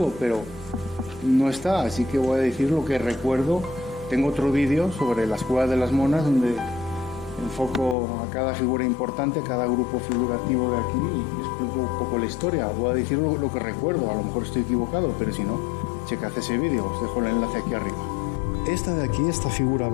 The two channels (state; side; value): drops out; right; at 8.0 s